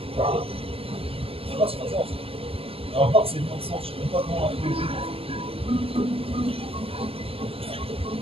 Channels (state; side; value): late; left; 0.28 ms